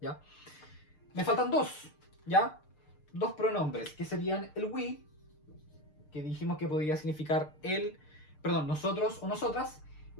¿ya? Me faltan dos, ¿ya? Dos pronombres, que serían el we, que dijimos que podría significar nosotros o nosotras,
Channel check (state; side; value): late; right; 6.6 ms